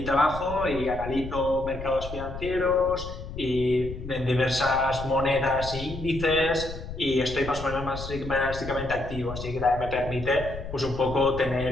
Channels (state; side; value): noise; left; rumble, 10 dB below the sound